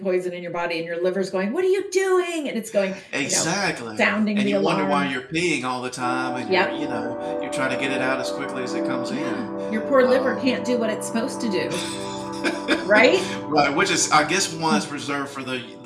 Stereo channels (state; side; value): identical; both; correlation 1.00